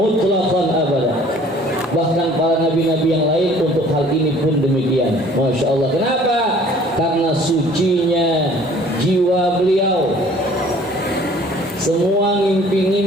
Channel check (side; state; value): both; normal; correlation 0.53